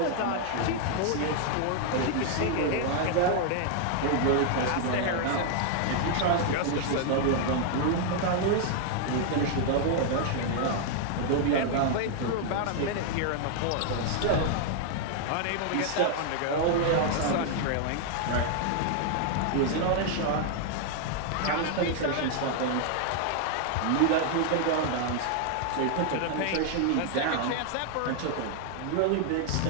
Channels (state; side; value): different; both; correlation 0.00